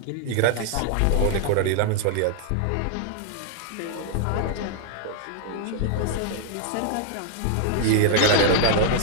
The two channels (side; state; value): both; different; correlation 0.00